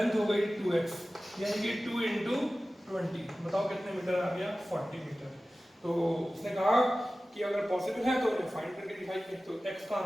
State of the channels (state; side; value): normal; both; correlation 0.96